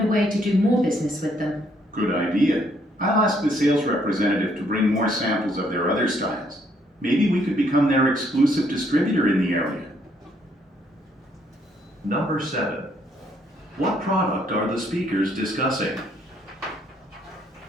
a way to do more business with them. Good idea. I'll ask the sales representative to bring more samples of their other styles. Maybe we could become their exclusive distributor in the area. Number 7. What product are the speakers discussing?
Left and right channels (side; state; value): both; normal; correlation 0.69